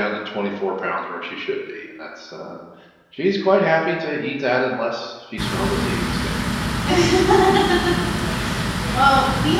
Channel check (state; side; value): identical; both; correlation 1.00